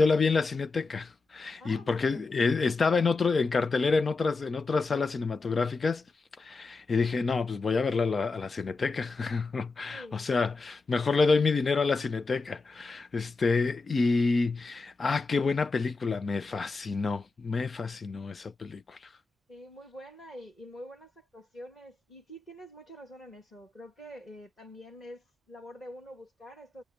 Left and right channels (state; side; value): quieter; right; 3.9 dB